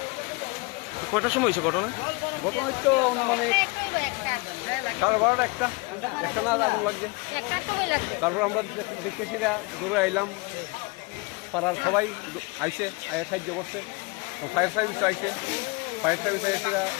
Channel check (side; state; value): right; quieter; 26.9 dB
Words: কয়টার সময় হয়েছে ঘটনা? ঘটনা তো মানে 12:30 একটা না আগুন লাগছে। তারপর আমরা দেখতেছি দৌড়ে আইলাম, পাড়ার সবাই আইসে সাহায্য করছে, ফায়ার সার্ভিস আইসে, ফায়ার সার্ভিস আইসে